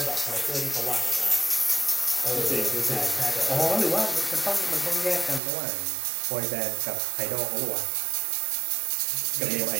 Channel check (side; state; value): left; drops out; at 5.4 s